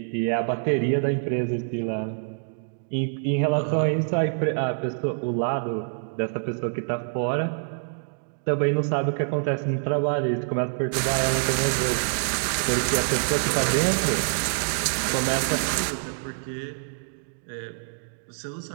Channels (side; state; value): left; silent; digital silence